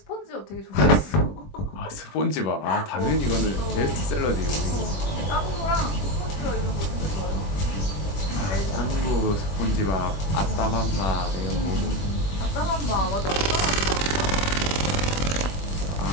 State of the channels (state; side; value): late; right; 20 ms